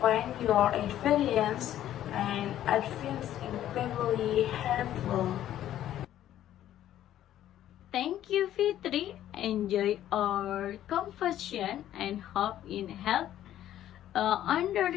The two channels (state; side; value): quieter; right; 12.1 dB